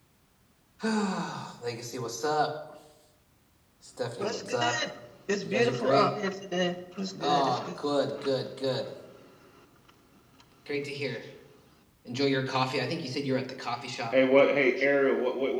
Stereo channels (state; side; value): identical; both; correlation 1.00